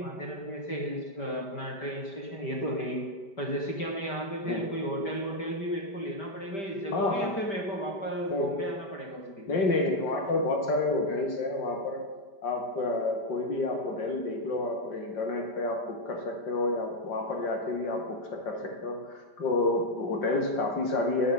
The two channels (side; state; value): right; late; 5.1 ms